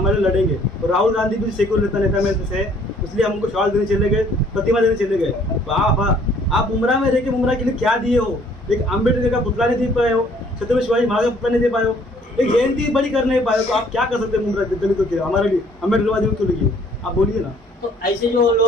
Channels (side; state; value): both; normal; correlation 0.60